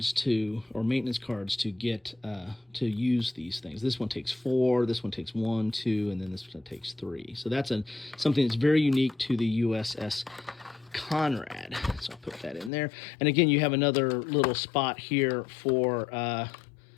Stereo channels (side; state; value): right; drops out; at 12.7 s